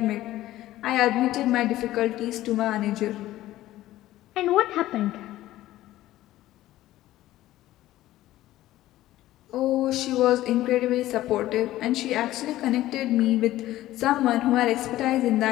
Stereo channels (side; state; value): right; quieter; 15.1 dB